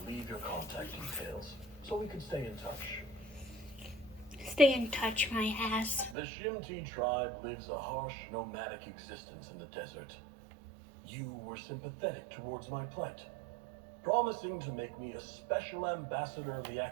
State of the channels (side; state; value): left; drops out; at 6.2 s